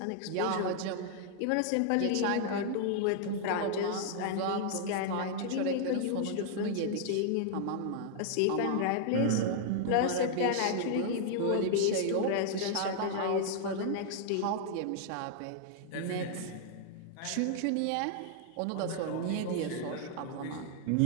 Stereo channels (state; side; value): different; both; correlation -0.01